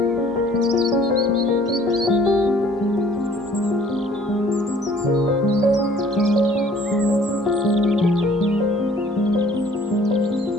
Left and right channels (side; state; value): both; normal; correlation 0.55